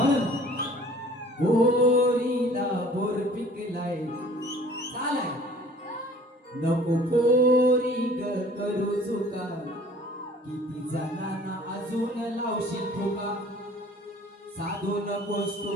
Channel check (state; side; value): normal; both; correlation 0.51